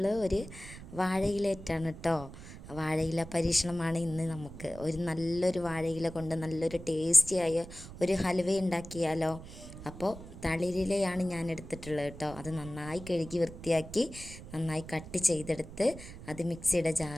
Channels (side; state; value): right; noise; rumble, 14 dB below the sound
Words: ഒരു വാഴയിലേറ്റാണ് കേട്ടോ. വാഴയില പരീക്ഷണമാണ് ഇന്ന്. നമുക്ക് ഒരു നല്ലൊരു വാഴയില കൊണ്ട് നല്ലൊരു ടേസ്റ്റിയായ ഒരു ഹലുവ ഉണ്ടാക്കിയാലോ. അപ്പോൾ തളിരിലയാണ് ഞാൻ എടുത്തിട്ടുള്ളത് കേട്ടോ. അത് നന്നായി കഴുകി വൃത്തിയാക്കി നന്നായി കട്ട് ചെയ്തെടുത്ത് അത് മിക്സിയുടെ